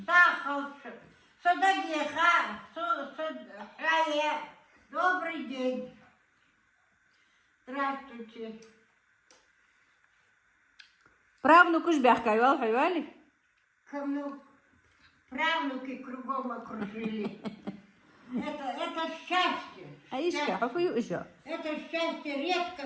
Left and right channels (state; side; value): identical; both; correlation 1.00